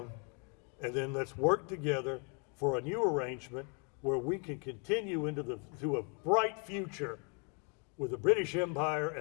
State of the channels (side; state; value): right; quieter; 36.8 dB